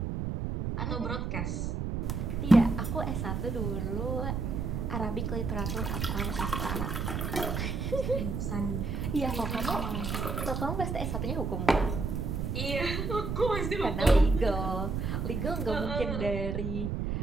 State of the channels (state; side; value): noise; right; rumble, 2 dB below the sound